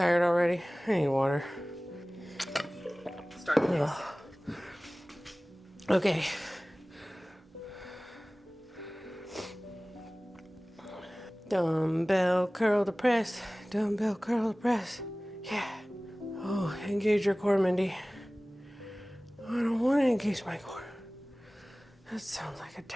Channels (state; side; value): normal; both; correlation 0.98